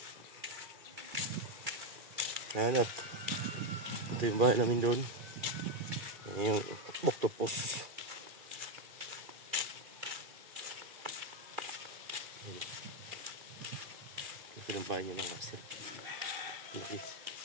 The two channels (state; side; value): late; left; 2.4 ms